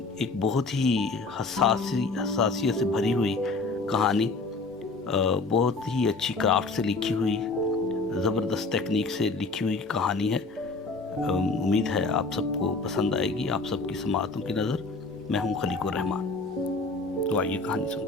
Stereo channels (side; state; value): right; quieter; 3.7 dB